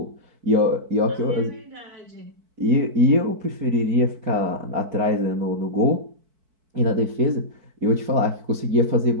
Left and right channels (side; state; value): left; late; 4.6 ms